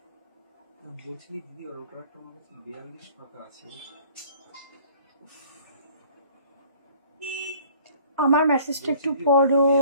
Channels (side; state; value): both; inverted; correlation -0.53